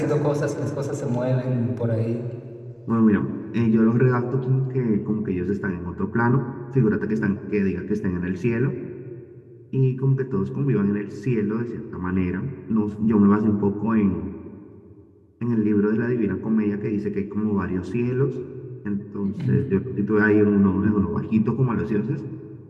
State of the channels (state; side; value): identical; both; correlation 1.00